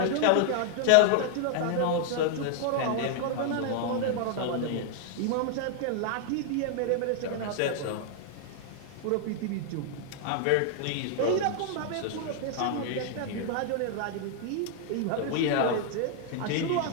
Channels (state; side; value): different; both; correlation 0.00